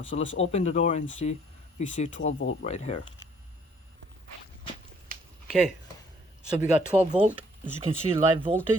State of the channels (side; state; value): both; normal; correlation 0.62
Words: So let's open the door and see. We see 12 volt right here. Okay, so we got 12 volt. As you can see, live